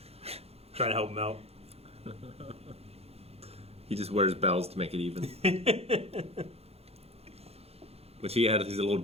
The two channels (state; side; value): late; left; 0.29 ms